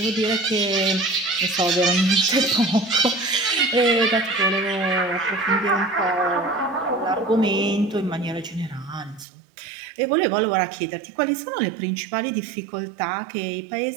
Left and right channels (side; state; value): left; drops out; at 9.2 s